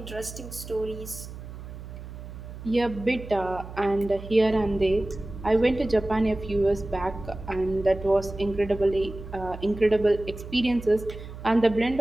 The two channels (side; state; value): right; noise; hum, 12 dB below the sound